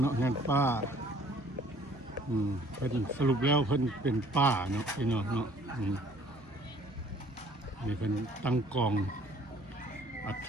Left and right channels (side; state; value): both; normal; correlation 0.57